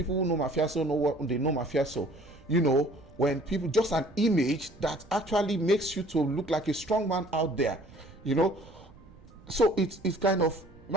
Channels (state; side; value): noise; right; rumble, 22 dB below the sound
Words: who know mafioso know what they know mafioso. You know, when people just an image that actually makes you to look like a strong man out there. You know. So it's kind of,